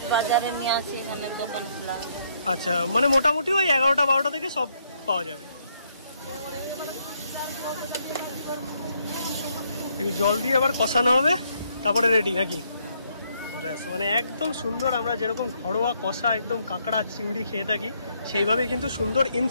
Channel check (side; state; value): both; inverted; correlation -0.72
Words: আচ্ছা, মানে মোটামুটি ওই 11টা 12টা থেকে সব পাওয়া যাবে। জল দিয়ে আবার কষানো হবে, তারপরে রেডি নাকি? মানে একদম সুন্দর, আমরা যেরকম ঘরোয়া কষা একদম কাঁকড়া চিংড়ি খেয়ে থাকি সেইভাবে কিন্তু সুন্দর